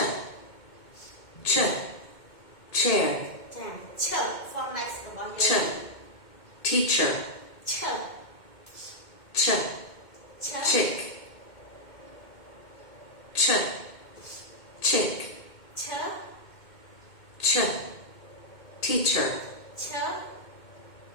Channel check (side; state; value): right; late; 2.2 ms